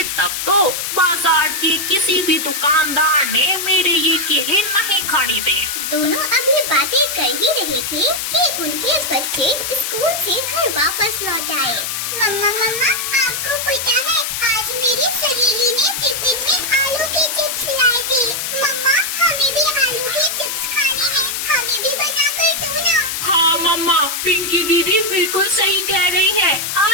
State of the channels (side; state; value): left; noise; hiss, 3 dB below the sound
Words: तब तो। बाजार के किसी भी दुकानदार ने मेरे ये केले नहीं खरीदे। दोनों अभी बातें कर ही रहे थे कि उनके बच्चे स्कूल से घर वापस लौट आए। मम्मा मम्मा, आपको पता है आज मेरी सहेली ने टिफिन में आलू के चिप्स लाए थे। मम्मा, हमें भी आलू के चिप्स खाने हैं, हमें भी बना कर दो ना। हाँ मम्मा, पिंकी दीदी बिल्कुल सही कह रही है।